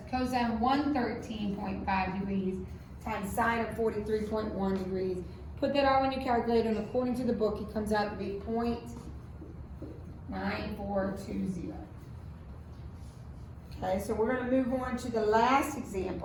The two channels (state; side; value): identical; both; correlation 1.00